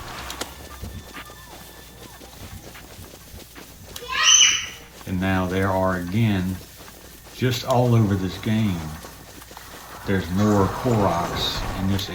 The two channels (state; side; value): identical; both; correlation 1.00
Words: And now there are again, just all over this game, there's more Koroks in this